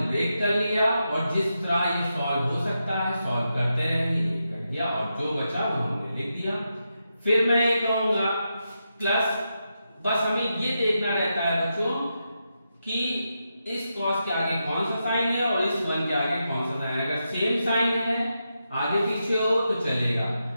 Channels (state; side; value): inverted; both; correlation -0.86